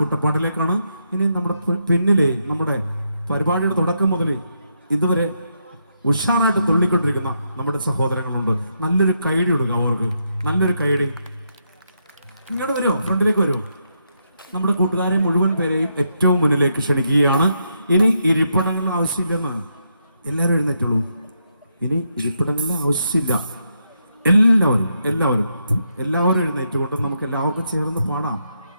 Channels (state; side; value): inverted; both; correlation -0.80